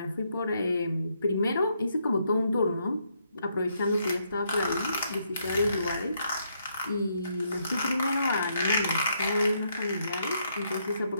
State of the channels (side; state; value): both; inverted; correlation -0.75